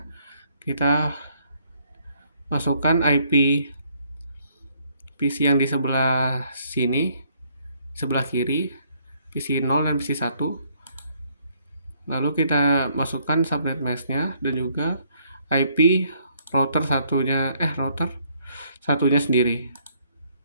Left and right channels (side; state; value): both; inverted; correlation -0.68